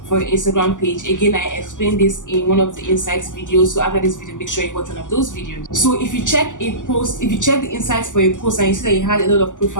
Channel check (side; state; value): right; late; 0.87 ms